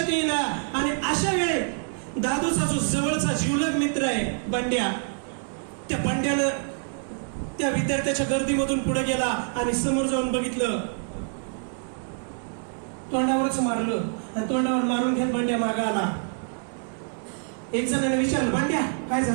येईना. आणि अशा वेळे दादूचा जो जवळचा जीवलग मित्र आहे बंड्या, त्या बंड्यानं त्या विद्यार्थ्याच्या गर्दीमधून पुढे गेला आणि समोर जाऊन बघितलं. तोंडावरच मारलं आणि तोंडावर मारून घेत बंड्या मागा आला. एक जणांनी विचारलं, बंड्या काय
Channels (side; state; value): left; silent; 58 dB below the other